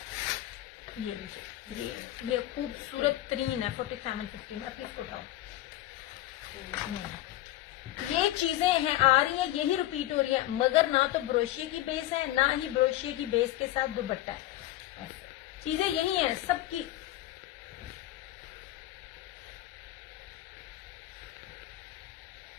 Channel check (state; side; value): quieter; right; 14.8 dB